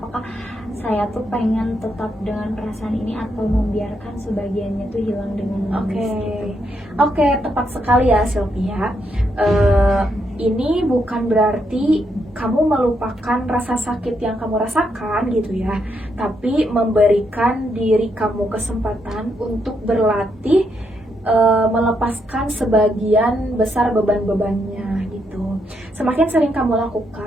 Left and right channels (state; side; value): normal; both; correlation 0.78